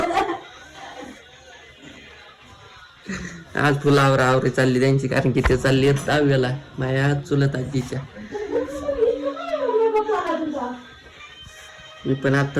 आज फुलावर आवरी चालली त्यांची, कारण की ते चालली आहेत दहाव्याला माझ्या आज चुलत आजीच्या. मी पण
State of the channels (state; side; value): identical; both; correlation 1.00